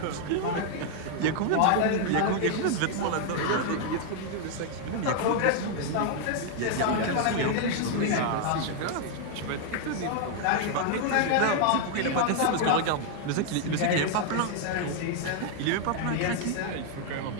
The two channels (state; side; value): different; both; correlation 0.00